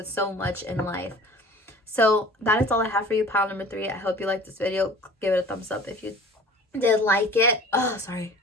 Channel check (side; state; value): both; normal; correlation 0.44